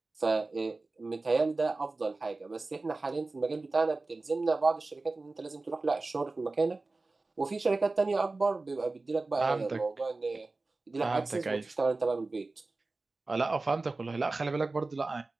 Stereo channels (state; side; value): quieter; left; 3.4 dB